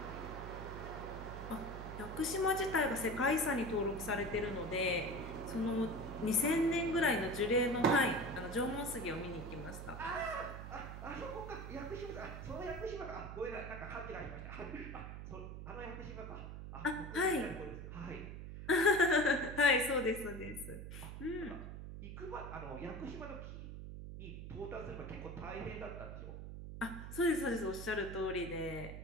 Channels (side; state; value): right; noise; hum, 9 dB below the sound